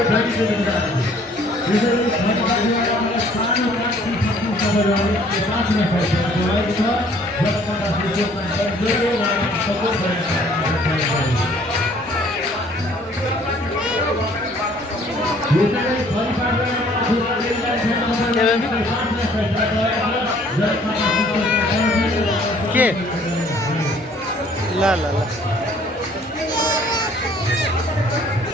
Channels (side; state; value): both; normal; correlation 0.58